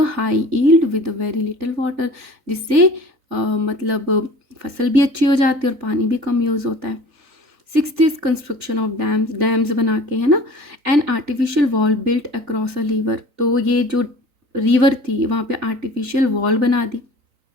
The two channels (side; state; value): left; late; 3.9 ms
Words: high yield with very little water, जिससे मतलब फसल भी अच्छी हो जाती है और पानी भी कम यूज़ होता है। Sixth is construction of dams. Dams बना के, है ना, an artificial wall built across a river. तो ये जो रिवर थी वहाँ पे आर्टिफिशियल वॉल बना दी,